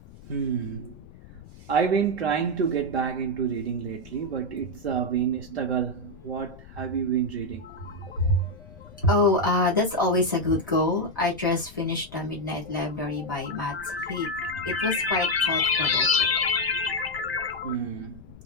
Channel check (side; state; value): left; noise; rumble, 19 dB below the sound